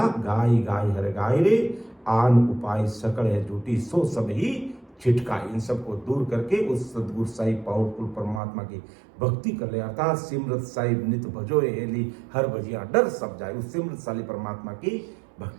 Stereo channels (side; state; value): left; drops out; at 8.4 s